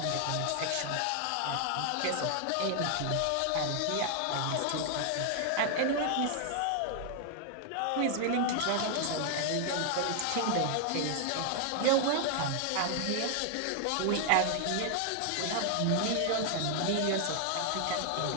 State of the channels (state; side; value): different; both; correlation 0.00